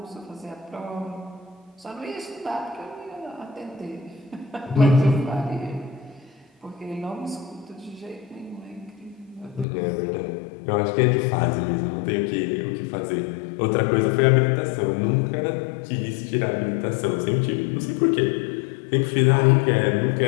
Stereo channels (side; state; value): right; drops out; at 9.7 s